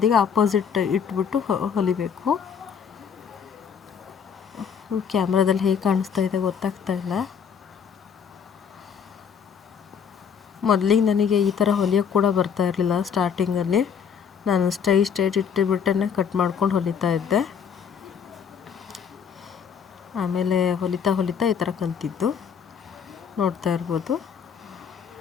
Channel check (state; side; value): quieter; right; 7.2 dB